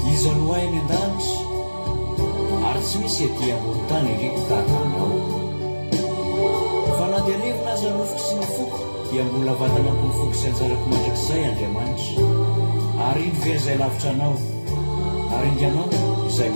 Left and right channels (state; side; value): inverted; both; correlation -1.00